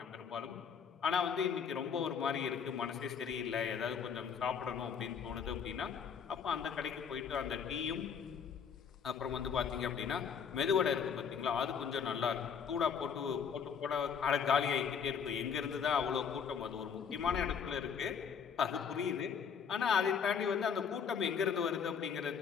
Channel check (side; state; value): right; quieter; 6.9 dB